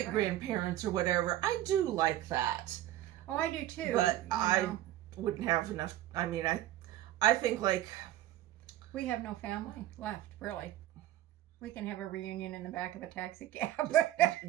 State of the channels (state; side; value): quieter; left; 13.8 dB